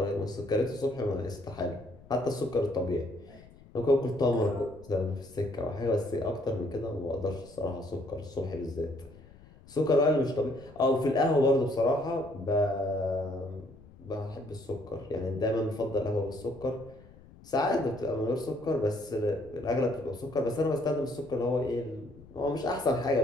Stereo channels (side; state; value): left; noise; rumble, 22 dB below the sound